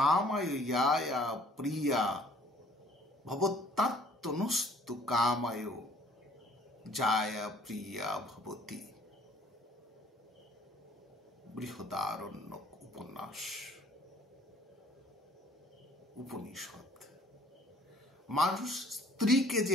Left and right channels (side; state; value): both; normal; correlation 0.57